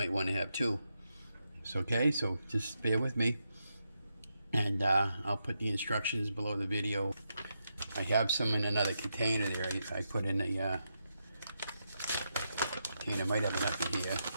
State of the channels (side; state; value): both; inverted; correlation -0.84